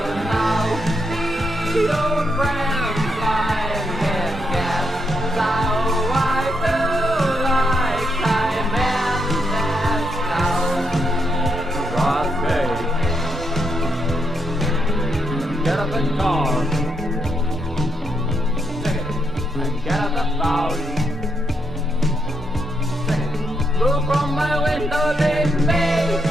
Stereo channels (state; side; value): normal; both; correlation 0.80